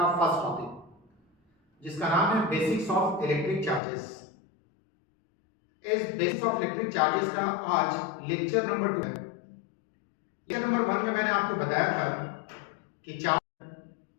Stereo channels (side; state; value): right; drops out; at 3.8 s